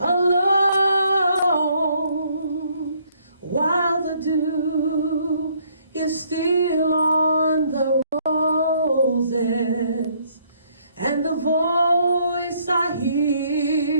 while the dew is still on the roses, and the voice I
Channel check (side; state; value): both; inverted; correlation -0.66